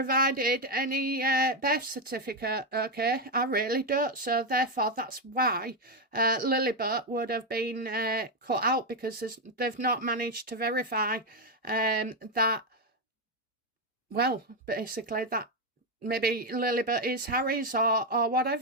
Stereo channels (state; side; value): normal; both; correlation 0.06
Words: any birth certificate, okay? I really don't. So therefore, that's why Lilibet would have been cut out, because they've not managed to verify that, well, basically that maybe Lilibet is Harry's or